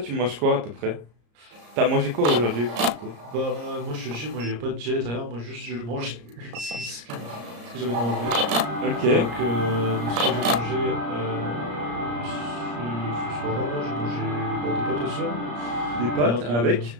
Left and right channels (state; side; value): late; left; 34 ms